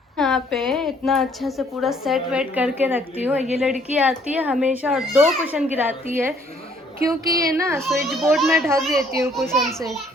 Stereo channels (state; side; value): normal; both; correlation 0.63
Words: यहाँ पे इतना अच्छा से पूरा सेट वेट करके रखती हूँ। ये लड़की आती है हमेशा और 2 कुशन गिराती है, क्योंकि ये ना स्विच बोर्ड में ढक देती हूँ कुशन से।